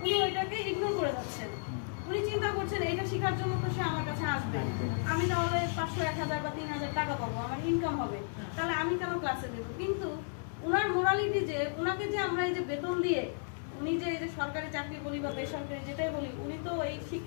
উনি ওইটাকে ইগনোর করে যাচ্ছেন। উনি চিন্তা করছেন এইটা শেখার জন্য তো সে আমার কাছে আসবে, আমি তাহলে 500, 1000 বা 3000 টাকা পাবো, আমার ইনকাম হবে, তাহলে আমি কেন ক্লাসে দেবো? কিন্তু উনার মোরালিটি যে উনাকে যে আমরা এই যে বেতন দিয়ে, উনি যে এই যে সরকারি চাকরি বলি বা বেসরকারি যেটাই বলি, উনি তো এই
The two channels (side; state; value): right; silent; digital silence